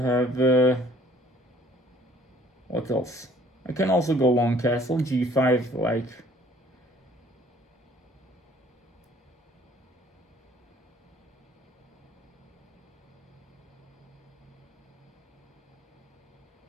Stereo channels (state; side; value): normal; both; correlation 0.57